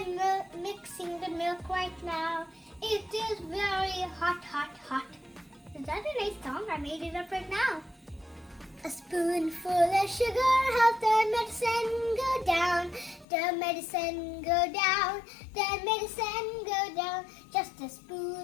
mixing the milk right now. It is very hot, hot, hot. Is that a nice song? I made it up right now. A spoonful of sugar helps the medicine go down. The medicine go down. The medicine go down. Just a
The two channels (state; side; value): drops out; right; at 13.2 s